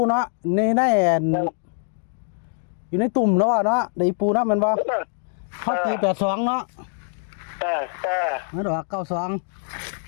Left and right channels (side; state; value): right; silent; 61 dB below the other